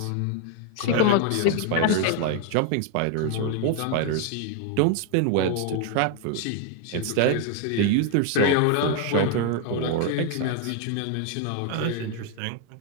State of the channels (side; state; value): both; different; correlation 0.00